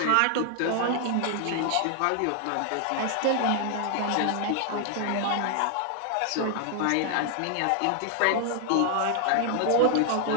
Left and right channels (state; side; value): different; both; correlation 0.00